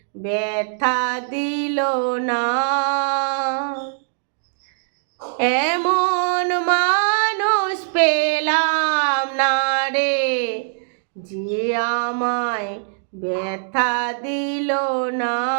ব্যথা দিল না। এমন মানুষ পেলাম না রে, যে আমায় ব্যথা দিল না।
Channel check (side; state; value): left; silent; digital silence